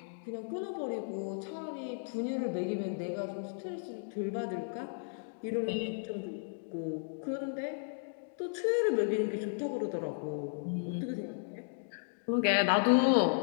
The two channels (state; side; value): silent; right; digital silence